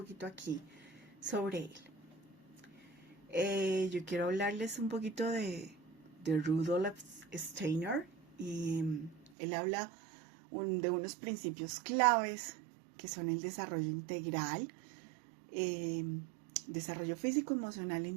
aquí sobre él. Yo quiero hablarles un poquito de Rudolf Steiner, y él habla de unos principios claves que son el desarrollo integral, desarrollo físico, emocional,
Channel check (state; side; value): drops out; left; at 9.3 s